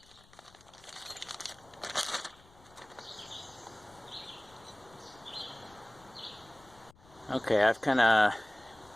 Okay, I've kind of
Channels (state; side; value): noise; left; rumble, 26 dB below the sound